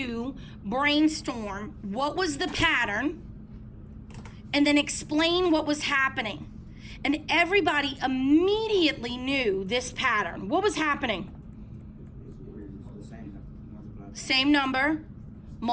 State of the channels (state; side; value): identical; both; correlation 1.00